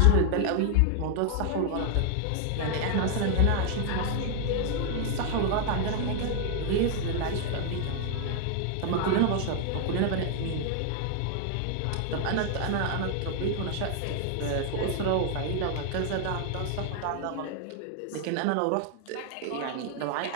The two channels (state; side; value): different; both; correlation 0.00